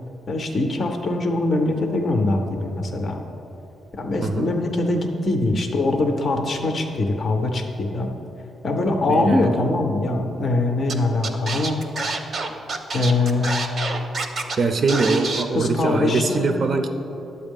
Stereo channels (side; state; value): both; normal; correlation 0.76